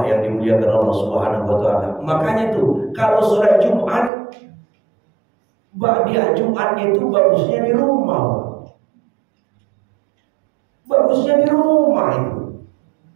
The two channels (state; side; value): drops out; left; at 4.1 s